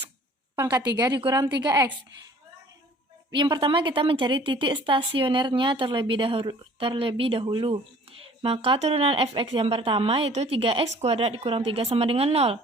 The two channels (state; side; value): normal; both; correlation 0.52